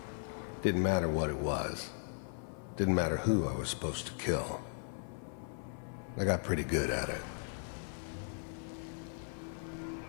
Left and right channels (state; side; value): silent; right; 53 dB below the other